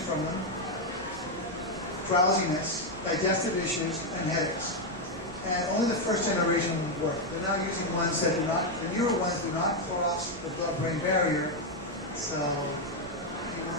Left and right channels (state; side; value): normal; both; correlation 0.03